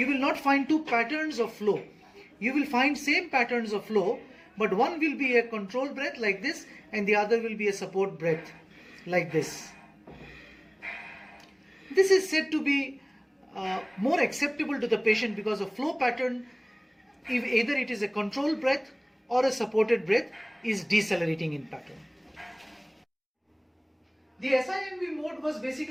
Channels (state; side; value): identical; both; correlation 1.00